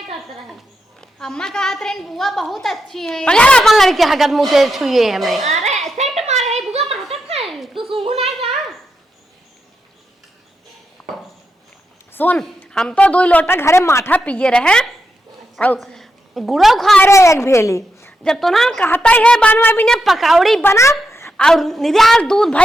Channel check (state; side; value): normal; both; correlation 0.85